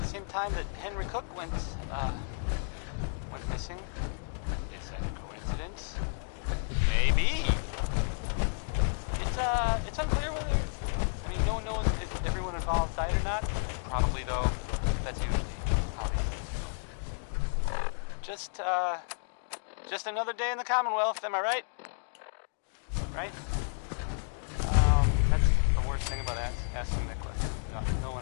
same time that Henry Cook went missing. Is that a coincidence? Maybe. It's unclear whether, no one knows if everyone involved died or not. Probably, though. That's usually Just another day in the Commonwealth, am I right? Right? That's the worst thing about asking that question. No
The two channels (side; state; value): right; silent; digital silence